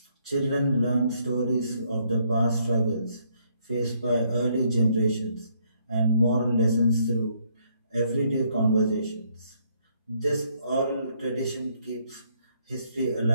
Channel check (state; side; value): inverted; both; correlation -0.70